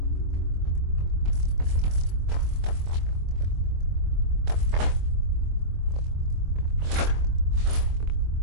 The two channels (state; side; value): late; left; 24 ms